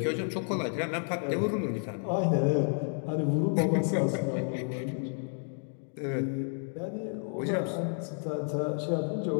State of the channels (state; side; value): silent; right; 57 dB below the other